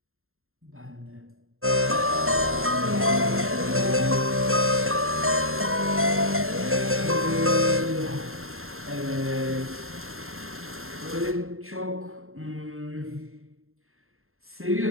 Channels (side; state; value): left; late; 0.61 ms